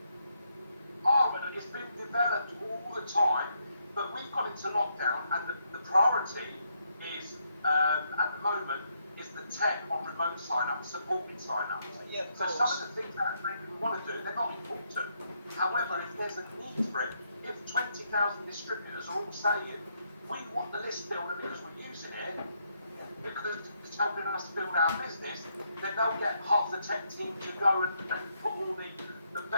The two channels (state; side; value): inverted; both; correlation -0.77